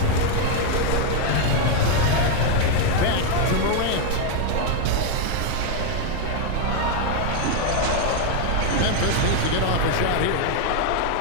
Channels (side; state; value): both; different; correlation 0.01